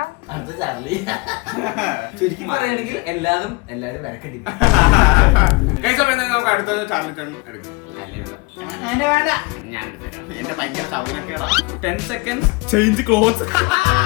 ചുരുക്കി പറയുകയാണെങ്കിൽ എല്ലാരും വരക്കേണ്ടി ഗൈസ് അപ്പോൾ എന്തായാലും നമുക്ക് അടുത്തത് ചാർലി ടേൺ എടുക്കും. ഞാൻ എടുത്തുതരാം. എന്റെ ഭയങ്കര സൗനക്കേടാ. 10 seconds ചേഞ്ച് ക്ലോത്ത്സ്.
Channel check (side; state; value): right; quieter; 26.5 dB